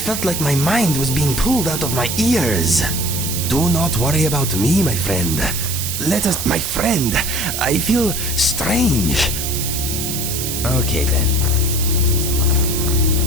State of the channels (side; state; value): right; noise; hiss, 3 dB below the sound